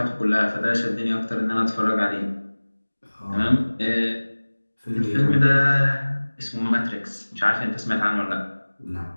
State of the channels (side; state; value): both; inverted; correlation -1.00